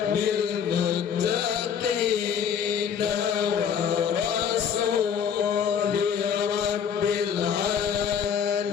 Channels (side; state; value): right; quieter; 7.7 dB